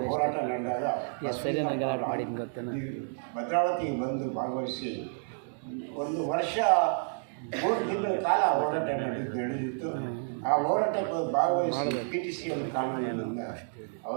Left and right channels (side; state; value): left; silent; digital silence